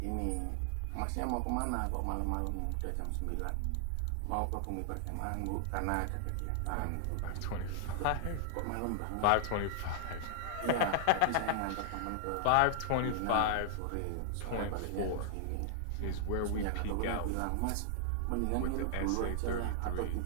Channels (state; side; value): different; both; correlation -0.01